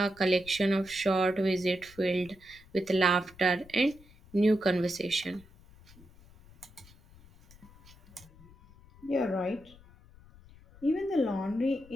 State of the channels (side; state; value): left; noise; rumble, 24 dB below the sound